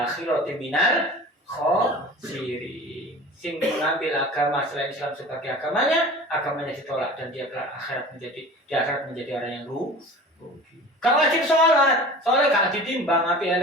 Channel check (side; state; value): both; normal; correlation 0.39